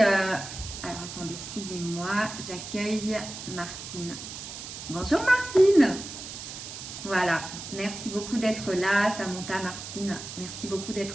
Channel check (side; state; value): right; noise; hiss, 10 dB below the sound